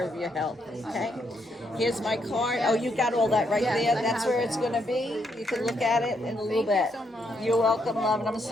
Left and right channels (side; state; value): both; normal; correlation 0.76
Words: of your health, okay? Here's my card. Oh, you got all that right there? That's where it's going to be. You can look at it in a little bit. Thank you so much. You're welcome, love, and I'm